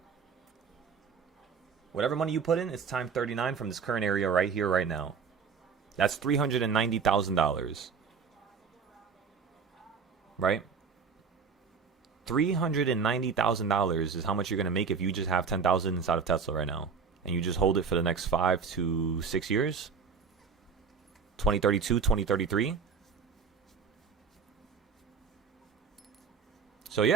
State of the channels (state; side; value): quieter; left; 5.8 dB